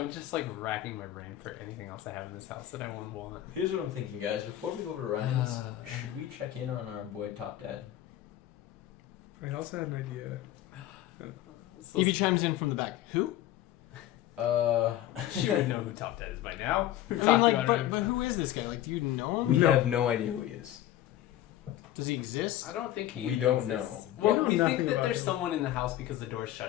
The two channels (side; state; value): right; quieter; 13.4 dB